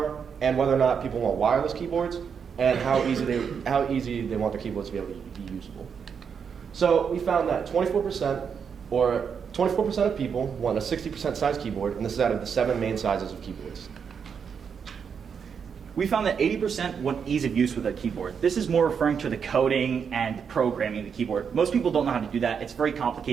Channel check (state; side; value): quieter; left; 6.7 dB